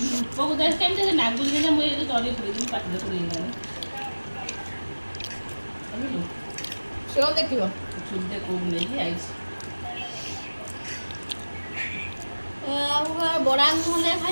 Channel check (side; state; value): both; inverted; correlation -1.00